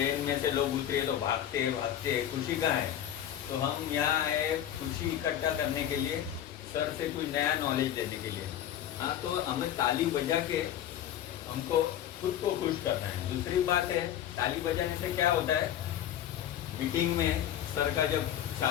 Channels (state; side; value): quieter; right; 11.0 dB